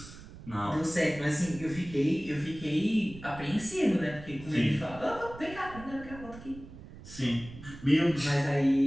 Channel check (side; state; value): right; noise; rumble, 16 dB below the sound